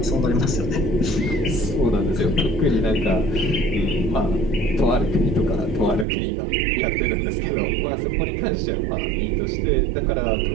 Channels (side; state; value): left; drops out; at 6.1 s